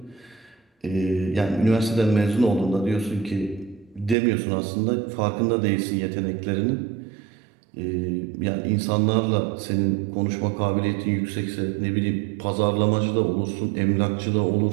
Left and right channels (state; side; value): drops out; left; at 4.2 s